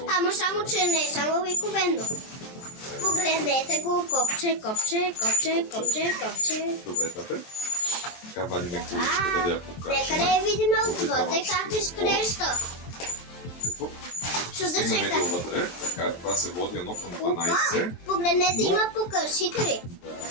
ама само, че не е само обикновено. Погледнете го, копче. Добре, тате. Така вадиме количката да я покажем. Нека да я видим отвътре как изглежда. Какво? Чуда се Стигнаме как. до вътре. Така, това се води 1 към 12. Погледнете, има покършители. Да.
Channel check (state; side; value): late; right; 23 ms